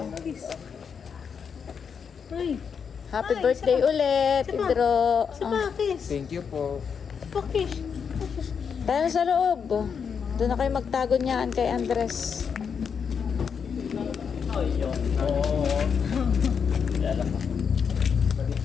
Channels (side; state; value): right; quieter; 6.6 dB